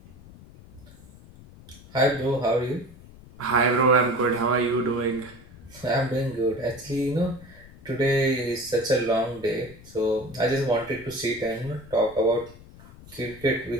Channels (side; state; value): left; noise; rumble, 20 dB below the sound